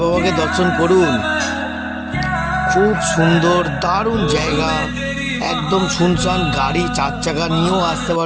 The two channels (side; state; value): both; identical; correlation 1.00